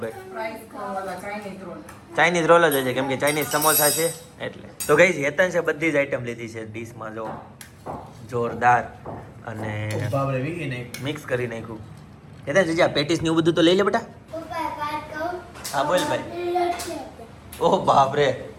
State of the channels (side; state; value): both; identical; correlation 1.00